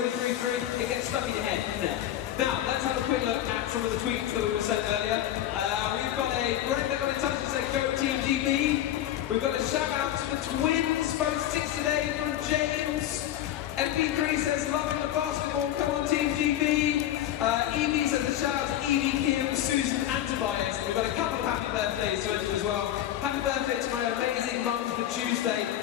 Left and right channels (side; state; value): right; quieter; 12.2 dB